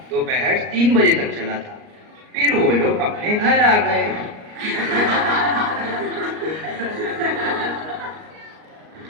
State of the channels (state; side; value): late; left; 38 ms